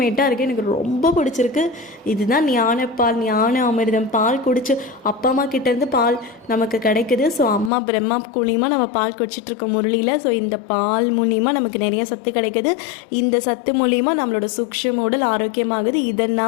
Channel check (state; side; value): drops out; right; at 7.7 s